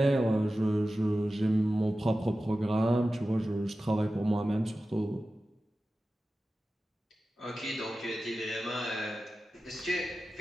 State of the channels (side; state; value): both; normal; correlation 0.95